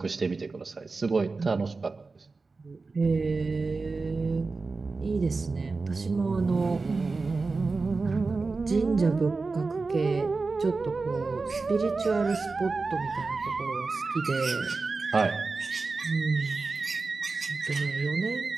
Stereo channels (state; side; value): quieter; left; 4.0 dB